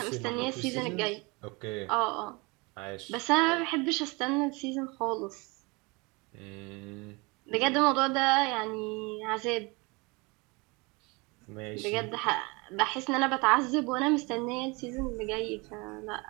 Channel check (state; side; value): quieter; left; 27.0 dB